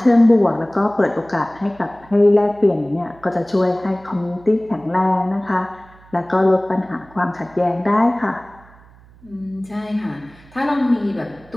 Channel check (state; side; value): noise; right; hum, 25 dB below the sound